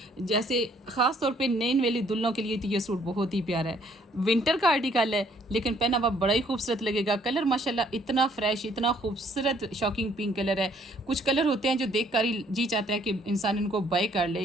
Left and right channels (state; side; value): normal; both; correlation 0.64